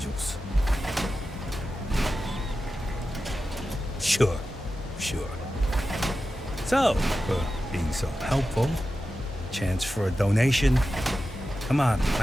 Sure. So, for being so helpful, chance for a donation. Come on,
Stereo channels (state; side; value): normal; both; correlation 0.92